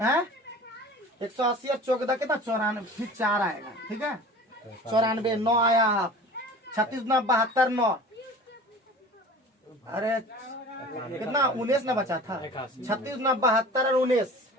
है 180 और 14 कितना? 94। फिर 4 आएगा। ठीक है, 94 9 आया। 36 9 72 9। अरे कितना? 19 ना बचा था। 36 9 72 और 19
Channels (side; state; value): both; normal; correlation 0.41